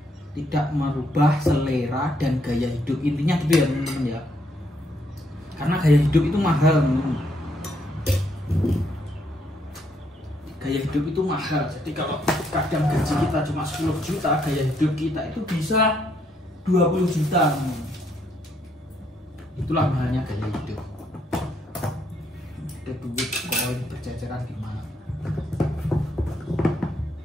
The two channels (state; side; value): normal; both; correlation 0.73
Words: tidak merubah selera dan gaya hidup, intinya gitu ya teman-teman ya. Karena gaya hidup itu mahal teman-teman. Gaya hidup itu mahal. Jadi kalau kadang gaji kita cuma 10 juta, gaya hidup kita itu bisa 20 juta teman-teman. Itulah mahalnya gaya hidup. ada duit koin berceceran di mana.